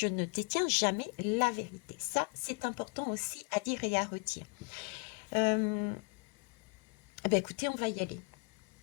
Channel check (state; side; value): quieter; right; 33.7 dB